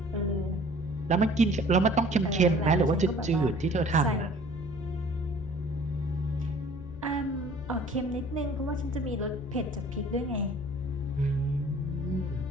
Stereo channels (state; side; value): noise; left; hum, 16 dB below the sound